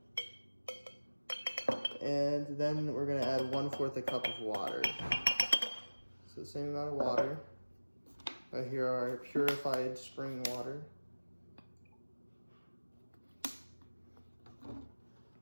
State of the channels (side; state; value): both; inverted; correlation -1.00